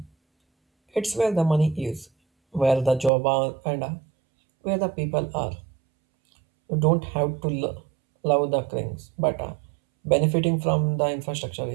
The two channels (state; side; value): drops out; left; at 3.1 s